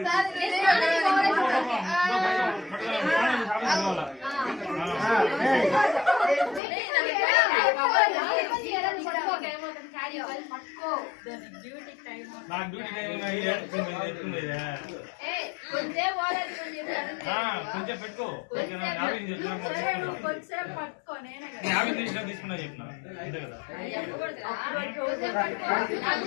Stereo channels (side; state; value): right; drops out; at 6.6 s